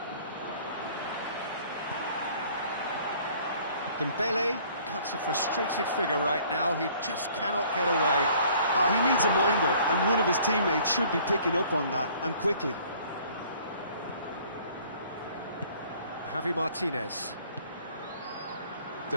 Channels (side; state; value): both; inverted; correlation -0.55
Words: Dembele cuts a frustrated figure right now. He just cannot get away. He needs a minder, and one of his teammates should be picking up on that, and quickly. Javi Martinez.